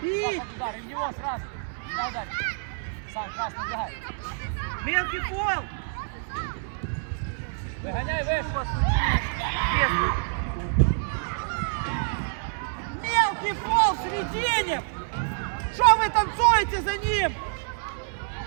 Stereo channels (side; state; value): left; silent; 60 dB below the other